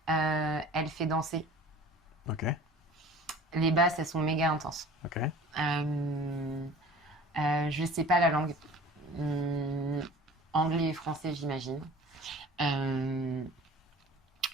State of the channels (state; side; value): normal; both; correlation 0.44